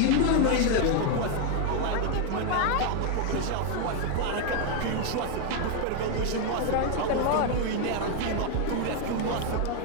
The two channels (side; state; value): both; different; correlation 0.01